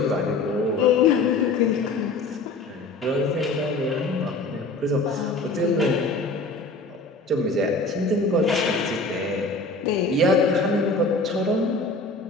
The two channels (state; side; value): quieter; right; 3.2 dB